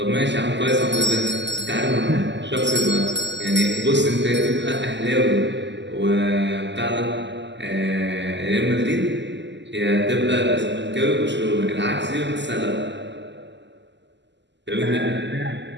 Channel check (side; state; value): left; late; 0.52 ms